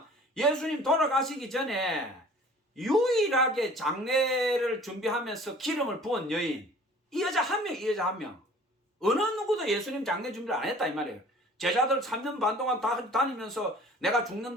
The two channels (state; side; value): normal; both; correlation 0.49